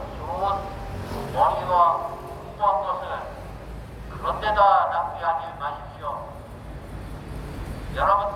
좋은 머리와 공부한 것을 그런 데다 낭비하지 마십시오.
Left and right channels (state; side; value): identical; both; correlation 1.00